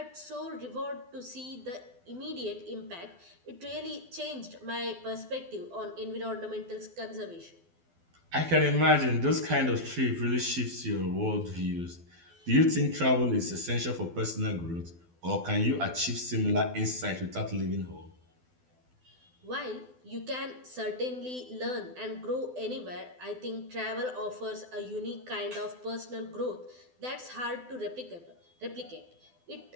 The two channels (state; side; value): late; left; 12 ms